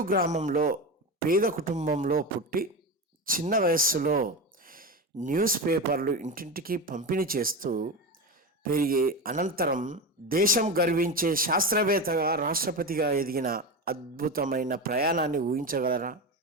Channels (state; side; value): normal; both; correlation 0.21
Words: గ్రామంలో పేద కుటుంబంలో పుట్టి చిన్న వయస్సులో న్యూస్ పేపర్లు ఇంటింటికి పంపిణీ చేస్తూ పెరిగి అనంతరం దేశం గర్వించే శాస్త్రవేత్తగా రాష్ట్రపతిగా ఎదిగిన అద్భుతమైన ప్రయాణాన్ని ఊహించగలరా?